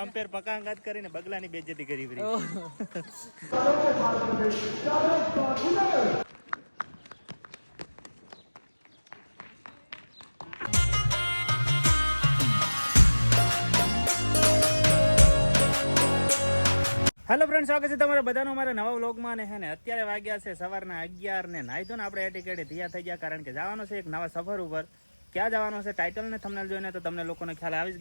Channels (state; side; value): inverted; both; correlation -1.00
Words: પકા અંગાત કરીને બગલાની બેઇજ્જતી કરી પડી હેલો ફ્રેન્ડ, સ્વાગત છે તમારા બધાનો અમારા નવા વ્લોગમાં. ને હે ને અત્યારે વાગ્યા છે સવારના 11 ને નાહી ધોઈને આપણે એટીકેટે તૈયાર થઈ ગયા, કારણ કે જવાનું છે એક નવા સફર ઉપર. ક્યાં જવાનું છે ટાઇટલ ને થંબનેલ જોઈને તો તમને લોકોને ખ્યાલ આવી જ